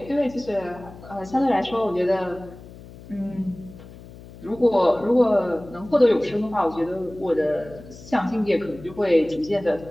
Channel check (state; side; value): noise; left; hum, 18 dB below the sound